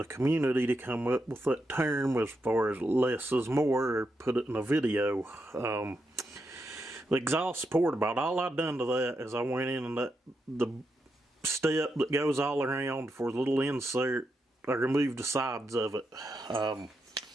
community to come up with that term as far as less is more, or put it in a video. The exhaust port, about all I done to that is I went in and the step that goes all around for the little insert, I removed the sides of it. I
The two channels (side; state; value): both; normal; correlation 0.84